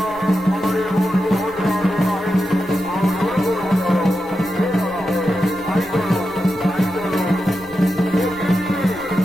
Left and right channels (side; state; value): left; noise; rumble, 22 dB below the sound